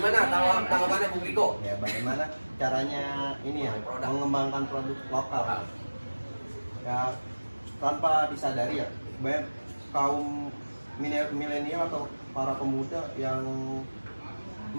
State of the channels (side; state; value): both; inverted; correlation -1.00